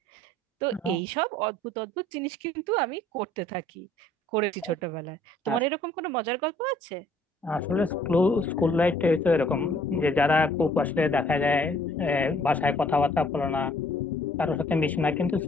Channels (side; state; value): both; normal; correlation 0.59